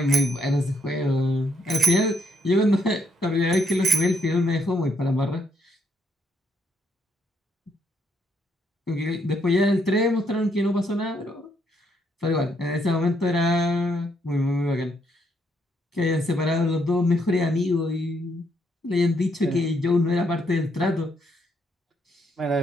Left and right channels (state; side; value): normal; both; correlation 0.73